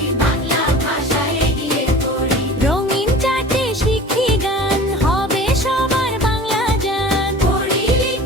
বাংলা ভাষা এগিয়ে পড়ি। রঙিন চাটে শিখি গান, হবে সবার বাংলা জান, পড়ি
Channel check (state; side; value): normal; both; correlation 0.41